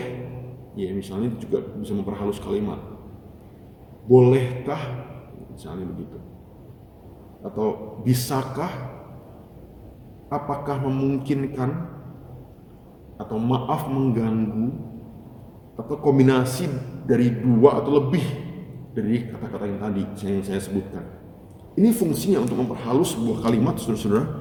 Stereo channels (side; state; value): both; identical; correlation 1.00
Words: ya misalnya juga bisa memperhalus kalimat. Bolehkah, misalnya begitu. Atau bisakah, apakah memungkinkan, atau maaf mengganggu, atau kombinasi dari dua atau lebih dari kata-kata yang tadi yang saya sebutkan. Ini fungsinya untuk memperhalus sebuah kalimat, saudara-saudara,